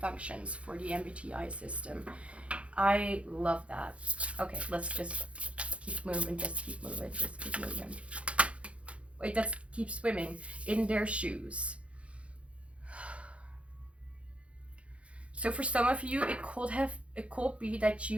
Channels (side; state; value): left; late; 0.062 ms